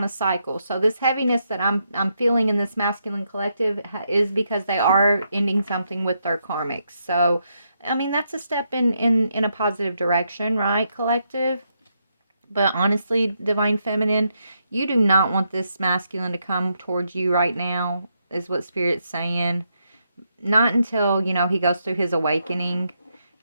a cycle. So this heaviness that I'm feeling in this masculine collective is because they are ending something with their karmics. So, I mean, that's a step in a positive direction, right, collective? But honestly, divine feminine, you do not want this masculine to come towards you right now, is what Spirit's saying. Not until, he goes through his awakening,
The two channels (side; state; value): both; inverted; correlation -0.80